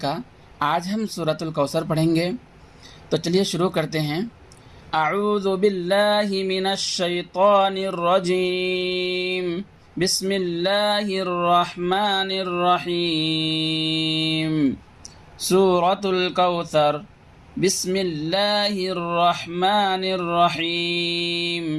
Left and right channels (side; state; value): both; identical; correlation 1.00